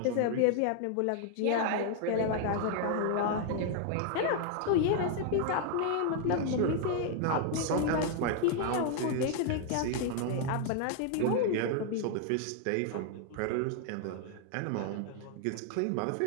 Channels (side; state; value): both; different; correlation 0.00